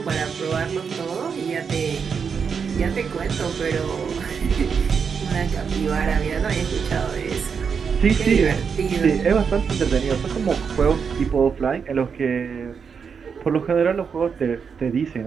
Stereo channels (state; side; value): quieter; left; 6.2 dB